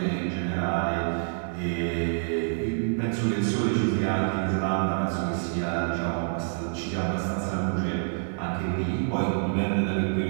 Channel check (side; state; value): left; silent; digital silence